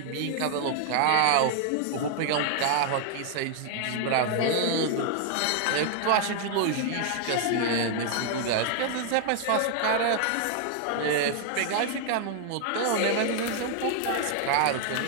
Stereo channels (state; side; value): different; both; correlation 0.00